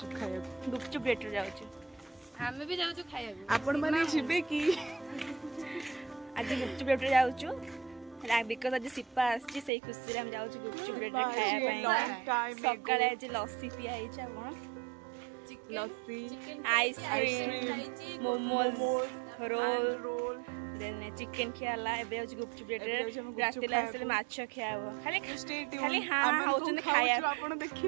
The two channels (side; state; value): left; drops out; at 9.7 s